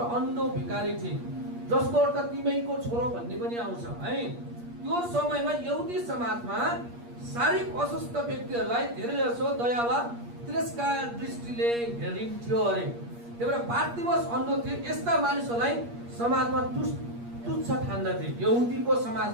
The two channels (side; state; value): left; late; 8.5 ms